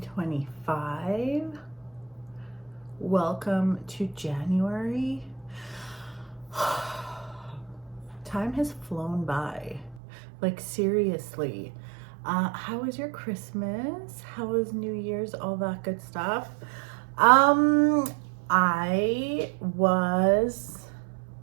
Welcome to January. Time has flown by. Like, seriously. How was your Christmas? How was New Year's? All that good stuff. I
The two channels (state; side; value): drops out; left; at 10.0 s